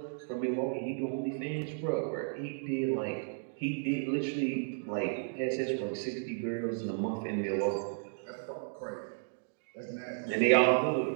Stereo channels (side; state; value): left; silent; digital silence